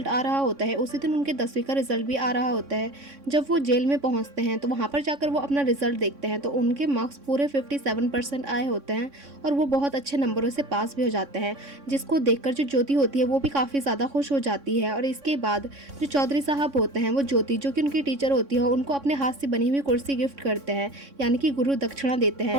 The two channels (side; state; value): left; late; 3.6 ms